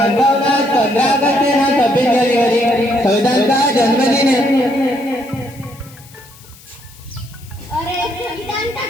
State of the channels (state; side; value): noise; left; hiss, 23 dB below the sound